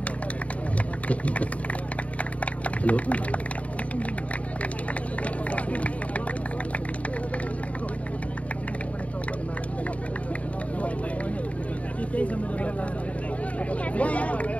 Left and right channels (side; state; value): right; late; 0.067 ms